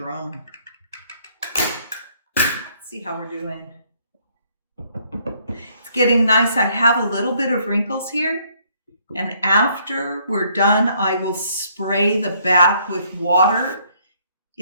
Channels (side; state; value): both; inverted; correlation -0.66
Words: See how we're doing. It's getting nice. I have a little bit of wrinkles here, and after we're done, I will spray the back with water.